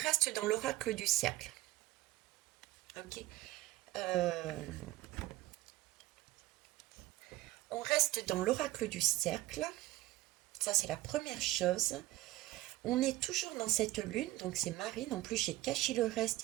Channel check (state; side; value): quieter; left; 17.1 dB